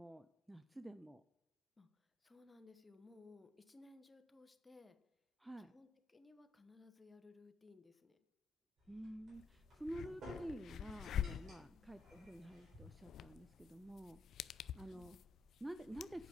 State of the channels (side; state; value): right; quieter; 3.9 dB